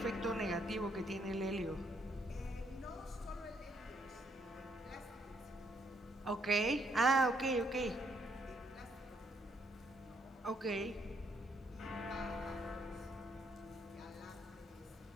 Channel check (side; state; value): both; normal; correlation 0.71